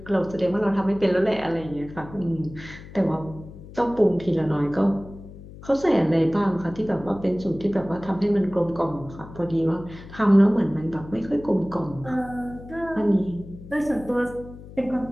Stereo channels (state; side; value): noise; left; hum, 16 dB below the sound